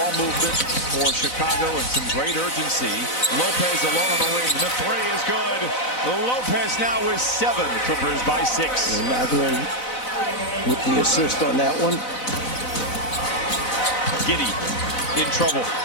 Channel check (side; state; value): right; late; 4.0 ms